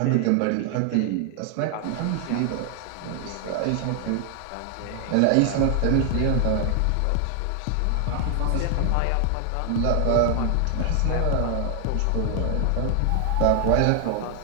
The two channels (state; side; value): different; both; correlation 0.00